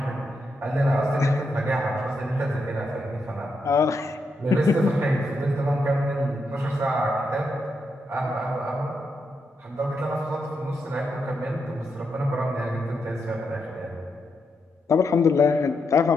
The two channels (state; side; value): normal; both; correlation 0.82